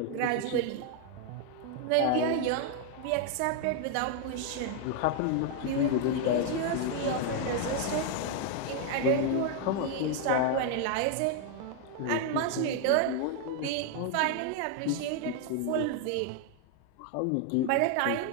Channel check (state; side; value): different; both; correlation 0.00